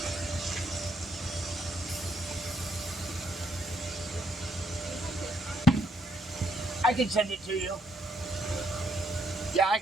I can send it to you. Yeah, I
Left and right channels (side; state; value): both; normal; correlation 0.73